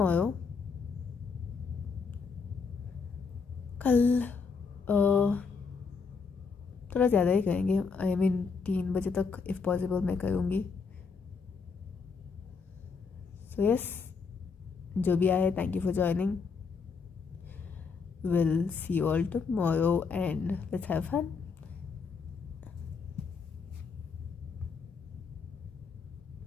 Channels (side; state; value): right; quieter; 5.2 dB